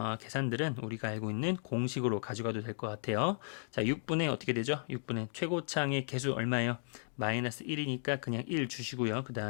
계산들은 우리가 알고 있는 공식으로 가져가도 될 것 같아요. 자, 6분의 어떻게 되죠? 6분의 최고창의 개수 얼마예요? 마이너스 1이니까 그냥 1 주시고요. 그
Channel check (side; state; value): right; silent; digital silence